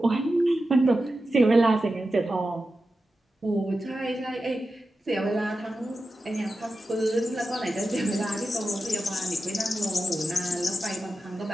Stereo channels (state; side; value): normal; both; correlation 0.92